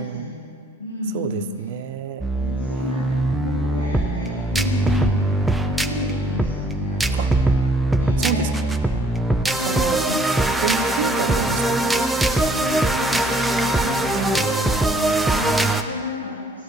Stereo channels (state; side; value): normal; both; correlation 0.64